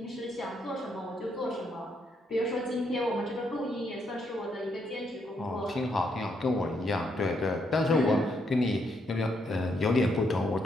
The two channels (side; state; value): both; normal; correlation 0.76